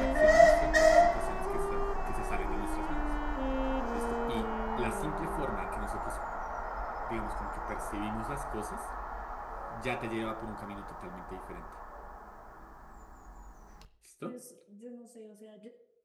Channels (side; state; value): both; identical; correlation 1.00